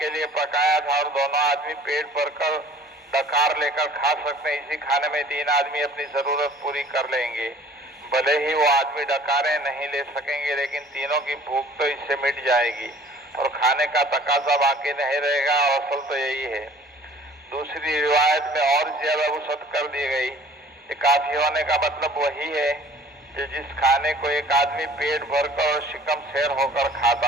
لیے پکایا تھا اور دونوں آدمی پیٹ بھر کر ڈکار لے کر کھا سکتے ہیں، اسی کھانے میں 3 آدمی اپنی ضرورت پوری کر لیں گے۔ بھلے ہی وہ آدمی ڈکاریں نہیں لے سکیں گے لیکن تینوں کی بھوک تو اس سے مٹ جائے گی اور کھانے کا تقاضا باقی نہیں رہے گا، اور اصل تو یہی ہے۔ دوسری روایت میں اور زیادہ وسعت کر دی گئی کہ کافی ہونے کا مطلب وہی ہے کہ جس کھانے کو ایک آدمی پیٹ بھر کر اور شکم سیر ہو کر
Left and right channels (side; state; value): both; normal; correlation 0.51